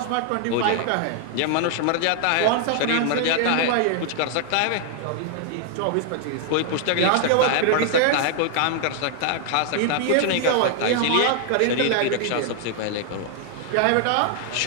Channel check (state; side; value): different; both; correlation 0.00